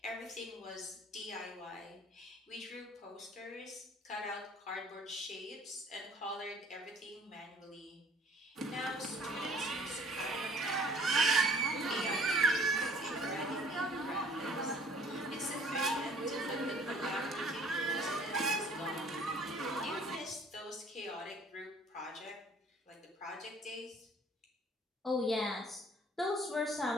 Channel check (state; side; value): normal; both; correlation 0.55